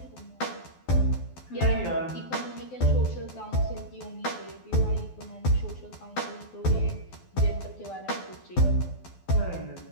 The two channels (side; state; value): right; late; 12 ms